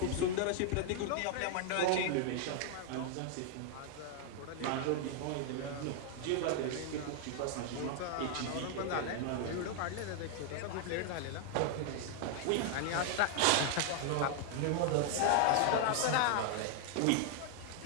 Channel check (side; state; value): both; different; correlation 0.00